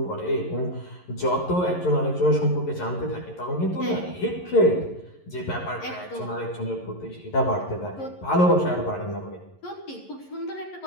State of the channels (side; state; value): right; late; 11 ms